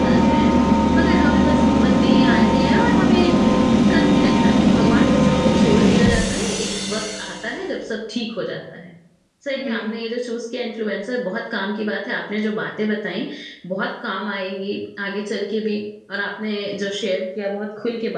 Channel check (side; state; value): both; identical; correlation 1.00